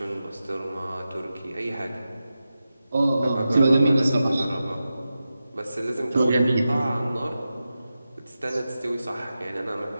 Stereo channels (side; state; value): both; inverted; correlation -0.92